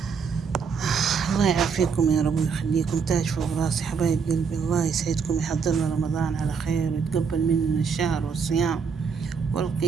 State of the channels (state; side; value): quieter; left; 5.9 dB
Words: الله يعافيكم يا رب ويخليكم، تاج فوق راسي حبايب قلبي. الله يسعدكم، يحضرنا رمضان على خير ويتقبل مننا الشهر والصيام